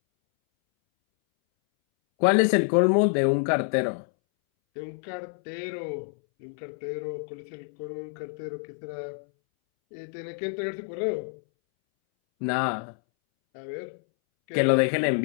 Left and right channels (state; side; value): silent; right; 60 dB below the other